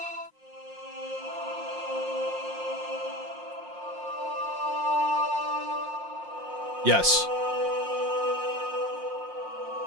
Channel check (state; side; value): late; left; 5.6 ms